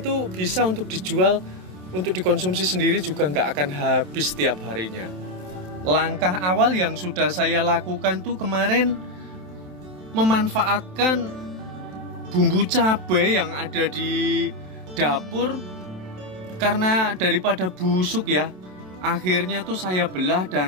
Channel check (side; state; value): left; late; 27 ms